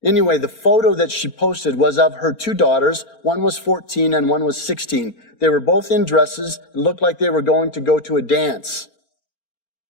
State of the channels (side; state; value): right; late; 4.4 ms